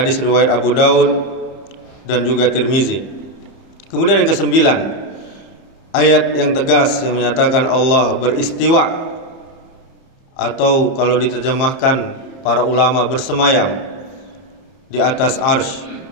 riwayat Abu Daud dan juga Tirmizi. Kemudian yang ke-9, ayat yang tegas yang menyatakan Allah beristiwa, atau kalau diterjemahkan para ulama bersemayam di atas arsy.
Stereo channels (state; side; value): late; right; 31 ms